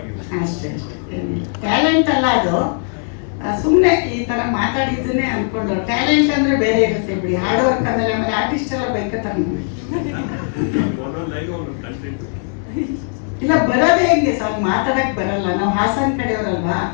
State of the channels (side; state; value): right; silent; 61 dB below the other